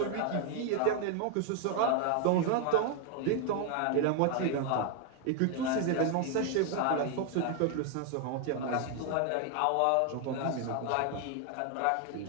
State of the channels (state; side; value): different; both; correlation 0.00